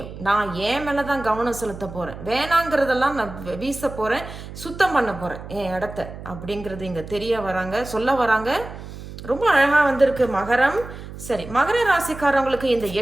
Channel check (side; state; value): right; noise; hum, 12 dB below the sound